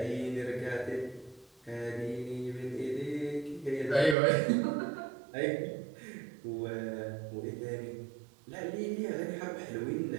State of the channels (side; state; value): left; drops out; at 4.2 s